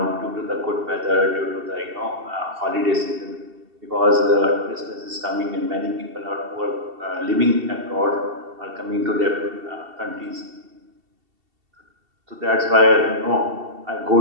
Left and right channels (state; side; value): late; left; 2.7 ms